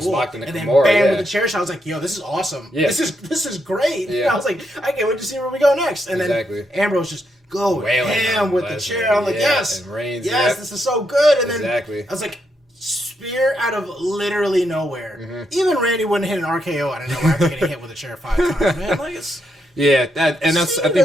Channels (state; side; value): normal; both; correlation 0.80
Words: And then bam with the chair shot. I was like, yo, this is awesome. Yeah. This is great. Yeah. I was like, I can't wait to see where we go next. And then Ambrose just go ham with the chair. I'm like, yes, this is so good. And then I was like, spear out of literally nowhere. Mm-hmm. Even Randy wouldn't hit an RKO out of nowhere after getting hit with a chair 5 times. Man, like it's. Yeah, that's. Cena